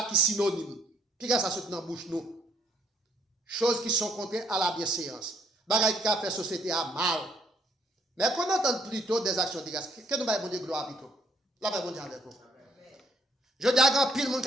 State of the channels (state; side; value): normal; both; correlation 0.67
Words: qui est synonyme. Puis quand ça saute dans la bouche, nous. Choses qui sont contraires à la bienséance. Bagay qui a fait société à mal. Mais qu'on entende plutôt des actions de grâce. Que nous baillons de gloire plutôt. Là, va bon Dieu avec vous. Je dis à grand pile monde